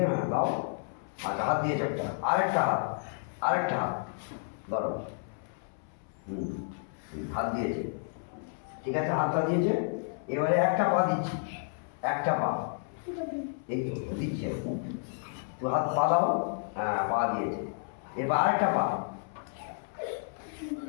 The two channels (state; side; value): silent; right; 57 dB below the other